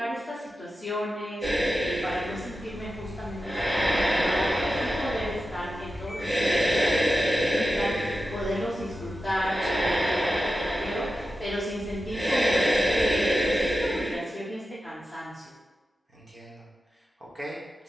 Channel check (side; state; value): both; normal; correlation 0.91